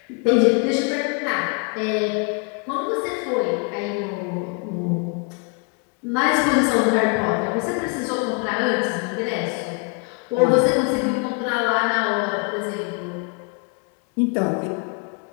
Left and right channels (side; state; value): right; quieter; 32.4 dB